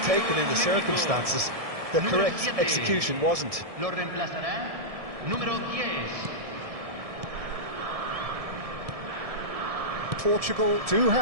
in the circumstances. The correct execution wasn't. Lo reemplazará número 10. Portugal do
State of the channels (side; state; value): left; late; 1.7 ms